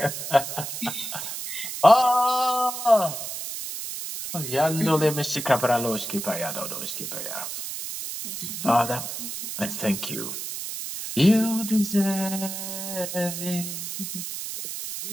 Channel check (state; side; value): noise; right; hiss, 6 dB below the sound